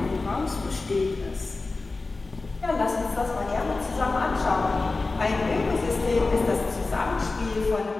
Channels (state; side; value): quieter; right; 3.6 dB